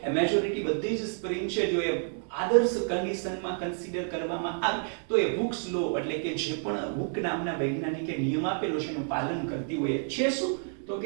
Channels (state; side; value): silent; left; 58 dB below the other